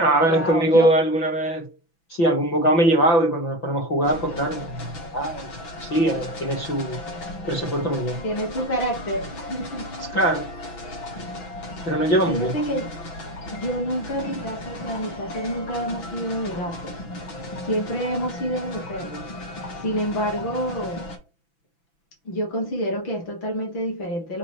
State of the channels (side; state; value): right; late; 6.0 ms